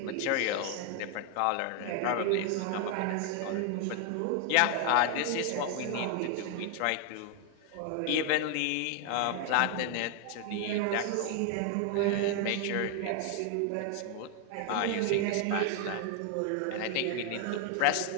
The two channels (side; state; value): both; different; correlation 0.00